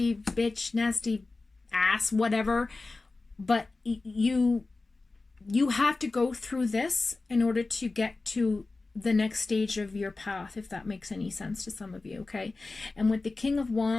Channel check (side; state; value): right; quieter; 3.5 dB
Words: bitch, nasty ass, whatever, but you have to go through this in order to get to the next stage of your path, if that makes any sense to some of you, okay? And with the King of